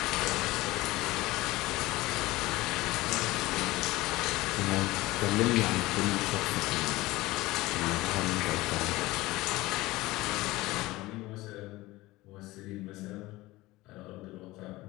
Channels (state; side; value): quieter; right; 19.3 dB